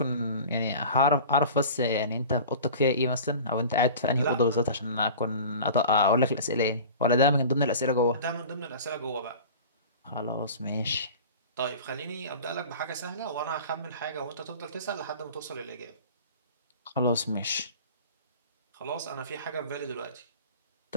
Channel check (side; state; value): both; inverted; correlation -0.38